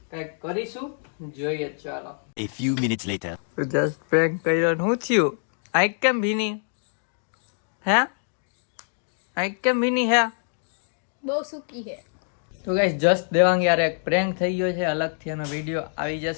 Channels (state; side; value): silent; right; digital silence